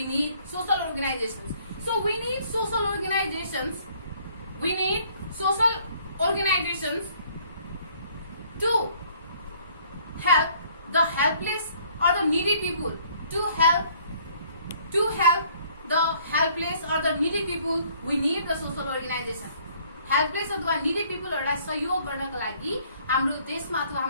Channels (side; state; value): both; inverted; correlation -0.61